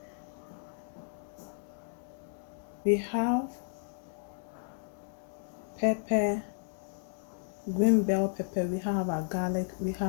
We have pepper, green bell pepper. We have our garlic. We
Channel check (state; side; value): silent; right; digital silence